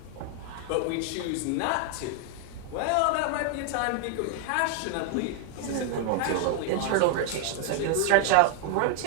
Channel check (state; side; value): different; both; correlation 0.00